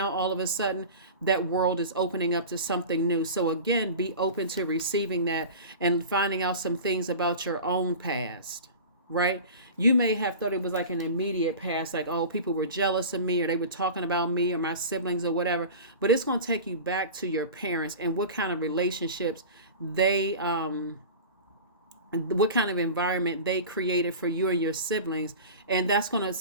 all of a sudden that world is opening up to something new. So again, be open to receiving that and finding out some things about your own past, right? You may have thought it was like an immediate past, like, oh, people were jealous of me, or they were talking about me or my siblings or whatever. But it's going to take you back to your parents and what kind of relationships they what kind of environment they created for you and your siblings, and that's gonna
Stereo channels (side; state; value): both; inverted; correlation -0.34